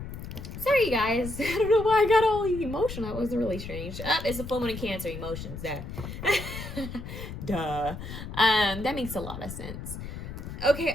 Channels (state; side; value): noise; left; rumble, 9 dB below the sound